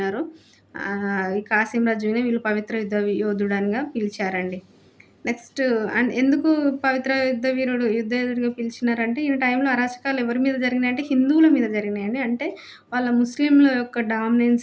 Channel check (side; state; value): both; identical; correlation 1.00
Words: ఈ కాసిం రజ్వీనే వీళ్ళు పవిత్ర యుద్ధ యోధుడనిగా పిలిచారండి. నెక్స్ట్ ఎందుకు పవిత్ర యుద్ధ యోధుడిగా పిలిచినారంటే ఈయన టైంలో అరాచకాలు ఎవరి మీద జరిగినాయంటే హిందువుల మీద జరిగినాయండి. అంటే వాళ్ళ ముస్లింల యొక్క